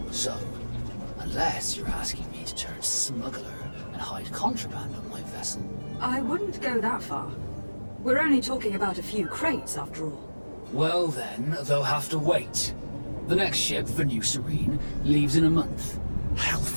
So, unless you're asking me turned smuggler and hide contraband on my vessel. I wouldn't go that far. We're only talking about a few crates, after all. Well then, they'll have to wait. The next ship for New Serene leaves in a month.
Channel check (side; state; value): both; inverted; correlation -1.00